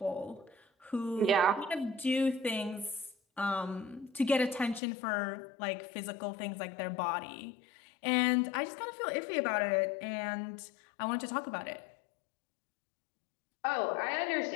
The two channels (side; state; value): right; drops out; at 4.8 s